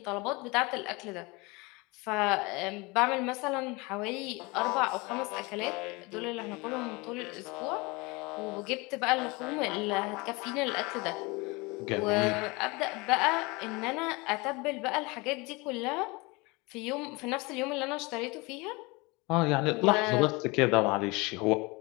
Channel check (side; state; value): right; quieter; 25.6 dB